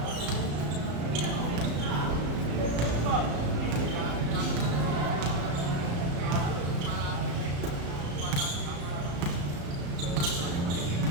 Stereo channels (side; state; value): left; late; 35 ms